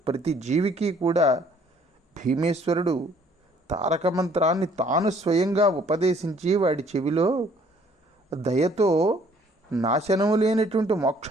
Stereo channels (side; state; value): both; normal; correlation 0.60